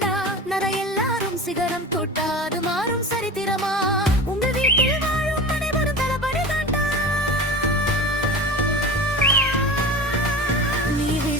சிகரம் தொட்டாது மாறும் சரித்திரமா, உங்க வீட்டில் வாழும் அனைவரும் தளபதி தாண்டா. நீ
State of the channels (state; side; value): normal; both; correlation 0.33